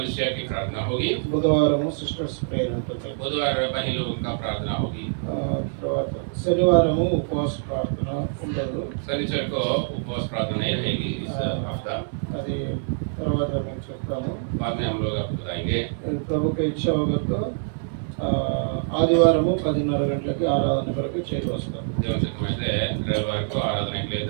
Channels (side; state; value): left; silent; 60 dB below the other